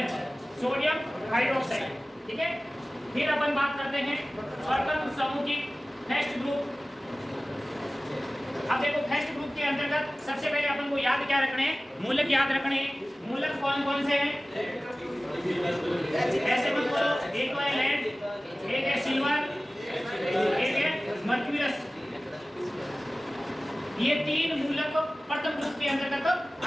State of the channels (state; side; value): normal; both; correlation 0.97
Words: sodium hydroxide. ठीक है, फिर अपन बात करते हैं स्वतंत्र समूह की, फर्स्ट ग्रुप। अब देखो फर्स्ट ग्रुप के अंतर्गत सबसे पहले अपन को याद क्या रखने हैं? मूलक याद रखने हैं। मूलक कौन कौन से हैं? ऐसे मत बोलो, एक है लेड, एक है सिल्वर, एक है मर्क्यूरस। ये तीन मूलक प्रथम ग्रुप के अंतर्गत